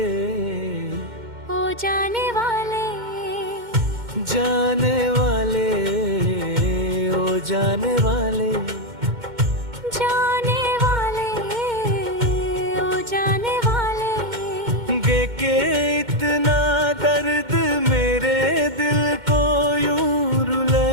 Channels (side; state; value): left; late; 2.1 ms